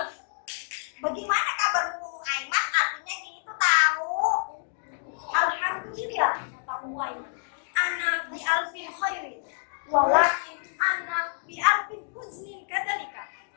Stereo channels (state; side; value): silent; right; digital silence